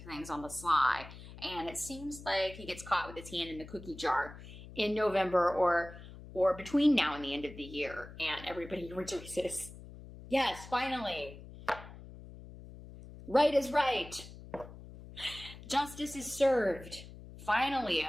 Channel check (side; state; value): left; noise; hum, 15 dB below the sound